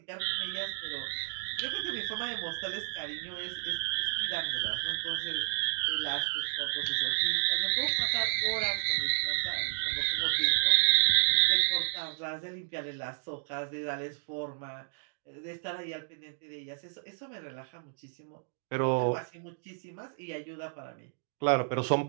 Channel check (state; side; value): silent; left; digital silence